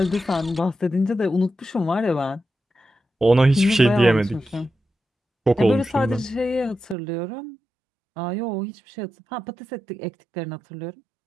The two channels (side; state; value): left; drops out; at 7.0 s